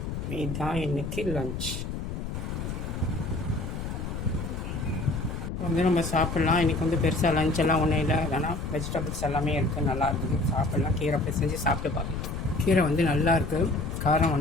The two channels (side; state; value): left; noise; rumble, 5 dB below the sound